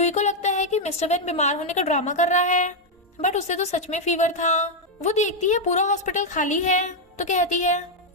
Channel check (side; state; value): both; normal; correlation 0.00